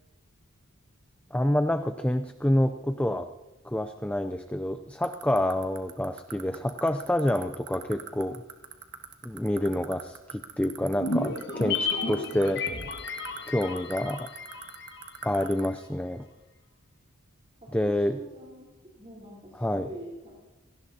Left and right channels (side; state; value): both; normal; correlation 0.85